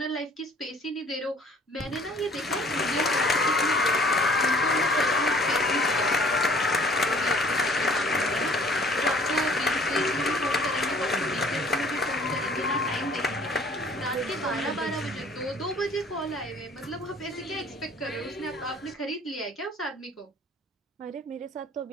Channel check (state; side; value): normal; both; correlation 0.54